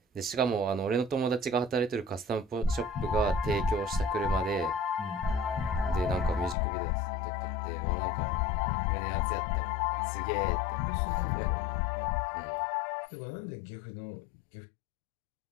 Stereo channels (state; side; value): drops out; right; at 6.6 s